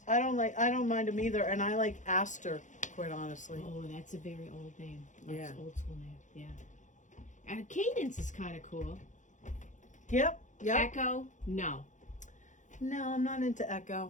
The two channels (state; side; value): late; right; 0.36 ms